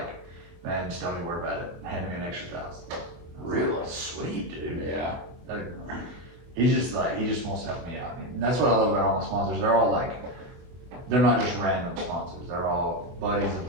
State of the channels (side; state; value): left; late; 24 ms